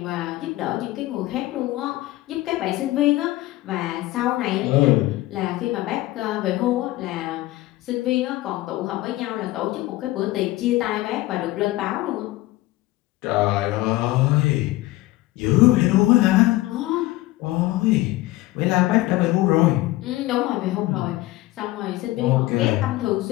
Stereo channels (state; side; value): quieter; right; 17.8 dB